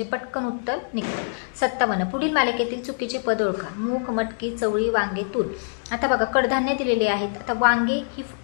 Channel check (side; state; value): right; silent; digital silence